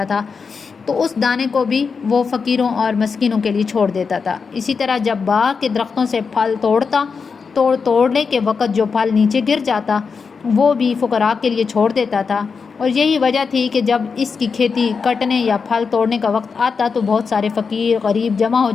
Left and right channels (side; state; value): right; quieter; 5.4 dB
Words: تھا تو اس دانے کو بھی وہ فقیروں اور مسکینوں کے لیے چھوڑ دیتا تھا۔ اسی طرح جب باغ کے درختوں سے پھل توڑنے کے وقت جو پھل نیچے گر جاتا وہ بھی فقراء کے لیے چھوڑ دیتا تھا۔ اور یہی وجہ تھی کہ جب اس کی کھیتی کٹنے یا پھل توڑنے کا وقت آتا تو بہت سارے فقیر غریب جمع ہو